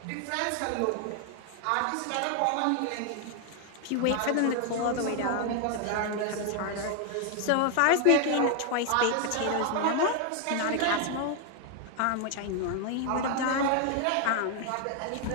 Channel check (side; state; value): both; different; correlation 0.00